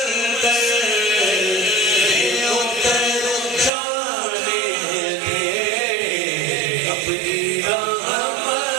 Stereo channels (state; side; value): drops out; left; at 3.7 s